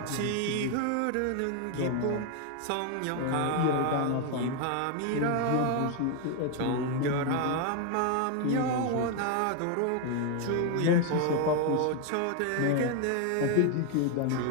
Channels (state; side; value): different; both; correlation 0.01